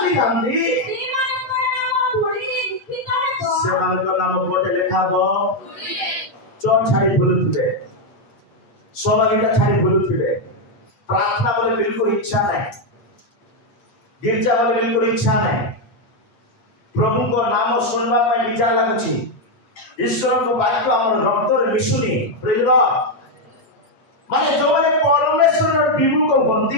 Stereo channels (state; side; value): late; right; 8.5 ms